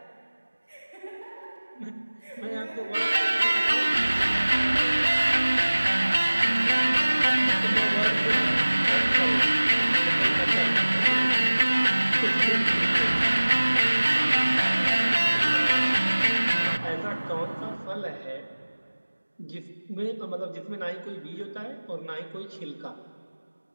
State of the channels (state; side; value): inverted; both; correlation -1.00